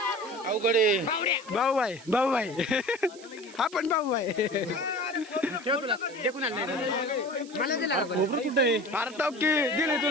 भाऊ भाई आपण भाऊ भाई अरे तो की दिली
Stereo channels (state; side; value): noise; right; hiss, 21 dB below the sound